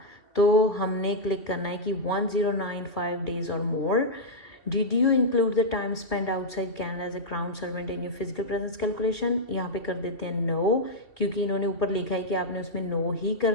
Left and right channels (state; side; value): late; right; 2.6 ms